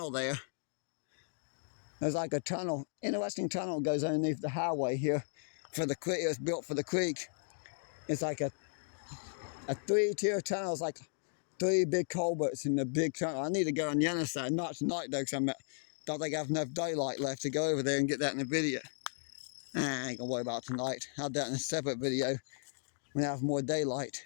there. There's like a tunnel, interesting tunnel goes underneath the highway here for the creek. It was built for the creek. It's like a 3-tier tunnel. It's like 3 big culverts in the big tunnel. I need to go on the other side, not tonight though, because I don't think I have enough daylight left to go over there and get that in the video. I ain't gonna worry about tonight. I'll do that in a separate video when I have more daylight.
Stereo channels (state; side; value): silent; right; digital silence